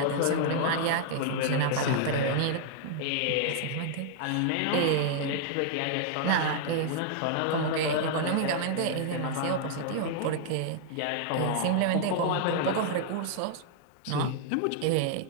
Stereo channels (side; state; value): both; different; correlation -0.01